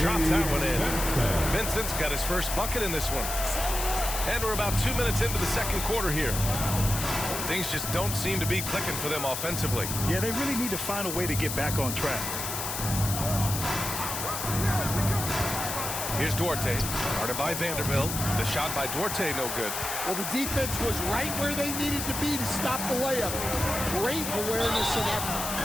drops that one in. Vincent's got his first bucket in this one. And we're about 2 minutes into the second quarter here. Things just don't seem to be clicking for them offensively. Yeah, they really need to find a way to get back on track. Here's Duarte, guarded by Vanderbilt. The shot by Duarte, no good. Well, the defense was right where they needed to be to stop the layup. Great awareness and effort.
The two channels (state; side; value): noise; left; hiss, 4 dB below the sound